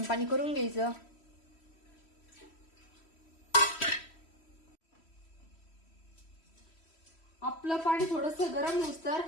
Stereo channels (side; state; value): right; late; 3.1 ms